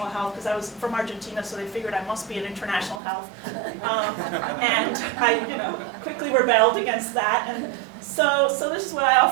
health because I was from Argentina, so they figured I must be in international health. And I quickly rebelled against that. And so this is what I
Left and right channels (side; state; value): left; drops out; at 3.0 s